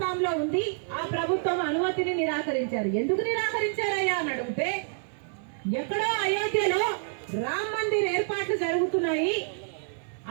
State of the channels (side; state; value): left; silent; 57 dB below the other